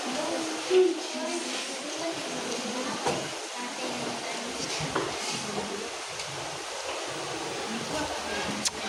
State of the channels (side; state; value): both; identical; correlation 1.00